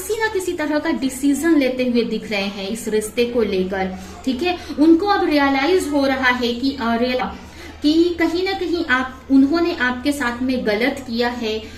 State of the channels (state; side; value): identical; both; correlation 1.00